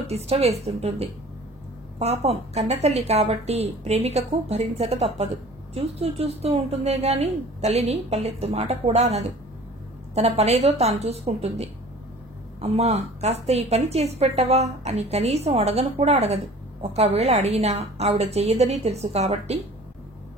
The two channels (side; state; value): both; normal; correlation 0.46